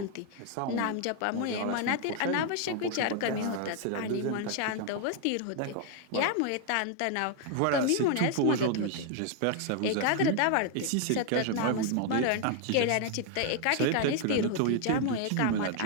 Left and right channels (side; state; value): both; different; correlation 0.00